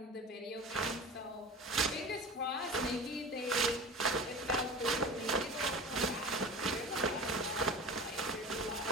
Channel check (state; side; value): normal; both; correlation 0.35